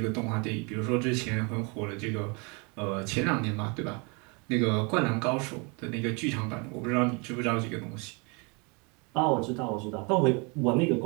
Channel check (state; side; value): quieter; left; 31.3 dB